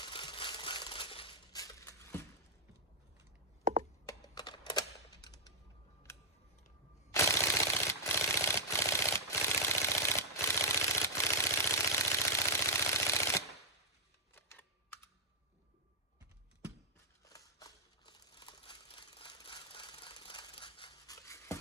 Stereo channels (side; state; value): both; normal; correlation -0.09